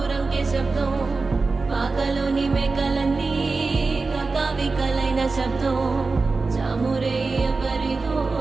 శబ్దం, పాకలోని మేకలన్నీ కకావికలైన శబ్దం, చామురే ఎవరిదో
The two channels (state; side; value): quieter; left; 4.0 dB